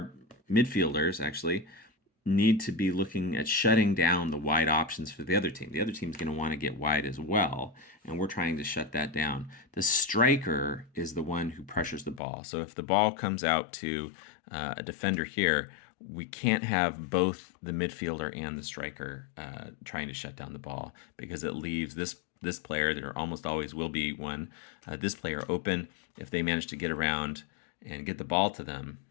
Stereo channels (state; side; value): drops out; right; at 12.2 s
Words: midfielders actually, need to be looking at shutting down the wide options for the other team. The other team's going to want to get wide as well, and we're trying to shut that down. The striker is the one who pressures the ball. So if the ball comes out to a defender here, we can't have both the midfielder and the striker trying to shut down the ball, because it leaves this player, there almost always will be one, this player open. If they manage to get around and get the ball to them,